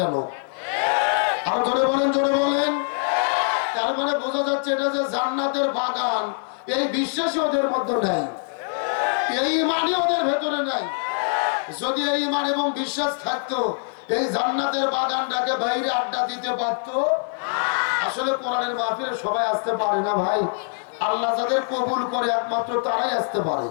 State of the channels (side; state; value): right; silent; 63 dB below the other